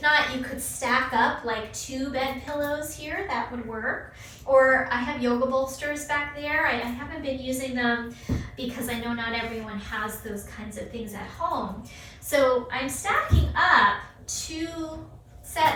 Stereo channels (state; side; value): identical; both; correlation 1.00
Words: you could stack up like 2 bed pillows here, that would work. Or I have yoga bolsters back there. I haven't been using them because I know not everyone has those kinds of things at home. So I'm stacking up 2